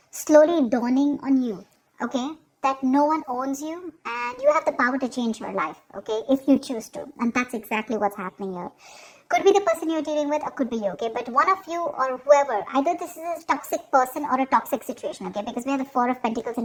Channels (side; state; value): both; identical; correlation 1.00